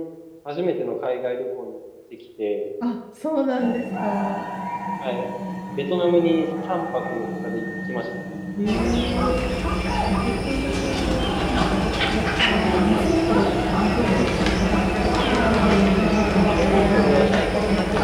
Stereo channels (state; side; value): identical; both; correlation 1.00